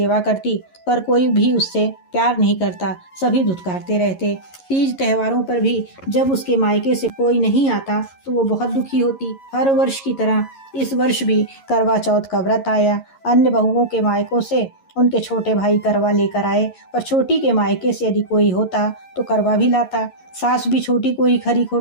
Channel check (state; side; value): late; right; 11 ms